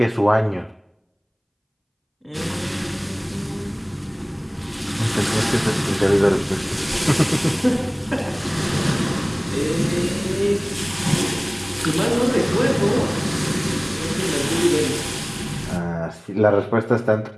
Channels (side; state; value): both; identical; correlation 1.00